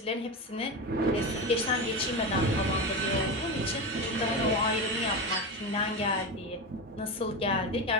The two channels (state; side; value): normal; both; correlation 0.20